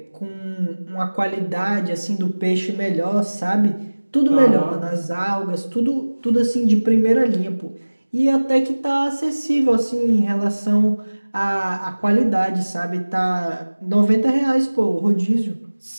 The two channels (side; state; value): both; inverted; correlation -1.00